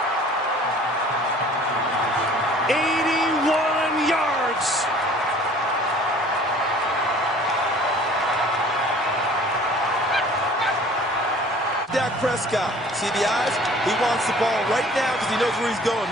81 yards. Dak Prescott, see the eyes? He wants the ball right now because he knows where he's going.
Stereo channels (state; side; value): normal; both; correlation 0.50